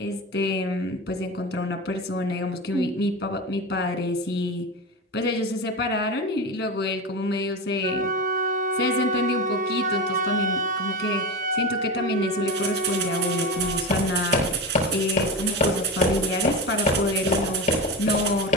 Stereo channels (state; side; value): normal; both; correlation 0.22